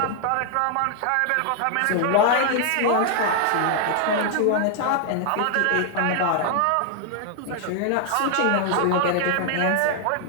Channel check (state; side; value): different; both; correlation 0.00